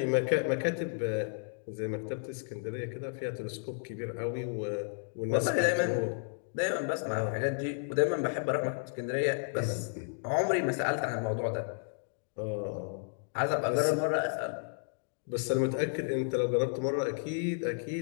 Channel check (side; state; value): right; silent; digital silence